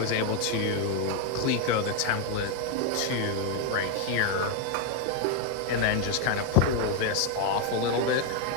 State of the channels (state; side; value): different; both; correlation 0.01